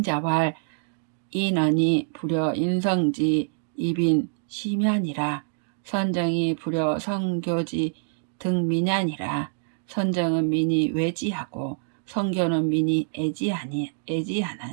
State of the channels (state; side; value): silent; left; digital silence